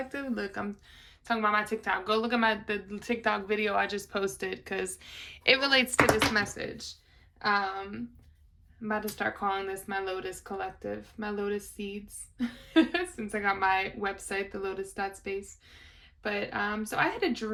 Look, I'm talking about my TikTok. Go look at the TikTok video I just posted because it relates to this message. I'm about to start calling this my Lotus Collective, my Lotus Seeds, since I got my website, the Lotus.space. But so I had a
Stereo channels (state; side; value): identical; both; correlation 1.00